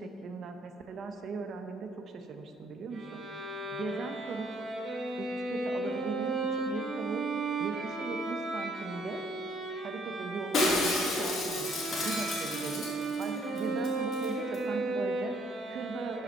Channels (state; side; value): normal; both; correlation 0.64